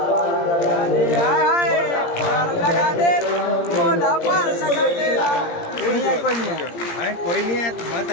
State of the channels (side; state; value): right; late; 17 ms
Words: पार लगा दे, पार लगा दे, मोला पार लगा दे। नहीं है, कोई नहीं है, कोई नहीं है।